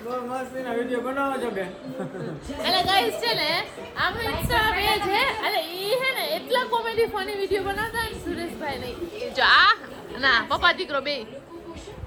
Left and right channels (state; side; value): identical; both; correlation 1.00